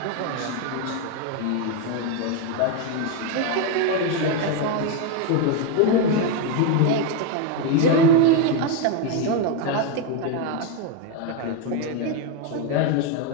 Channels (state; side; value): different; both; correlation 0.02